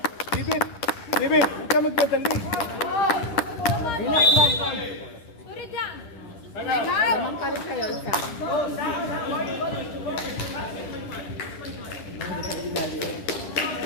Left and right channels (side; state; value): right; late; 10 ms